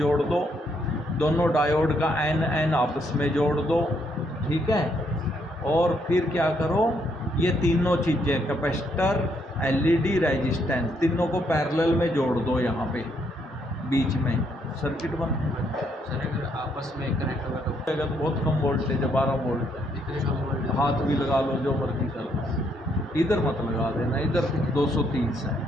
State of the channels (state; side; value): normal; both; correlation 0.73